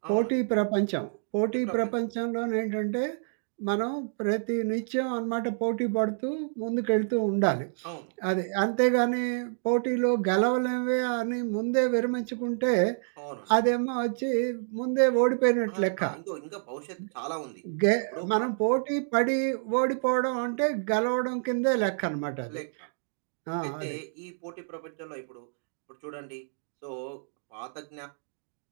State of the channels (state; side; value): silent; left; digital silence